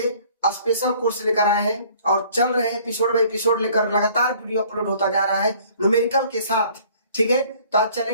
स्पेशल कोर्स लेकर आए हैं और चल रहे हैं एपिसोड बाय एपिसोड लेकर, लगातार वीडियो अपलोड होता जा रहा है न्यूमेरिकल के साथ। ठीक है, तो आज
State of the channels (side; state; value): both; inverted; correlation -0.55